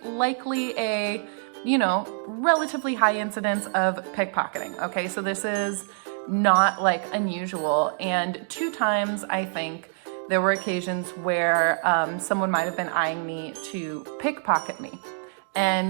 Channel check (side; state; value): left; silent; digital silence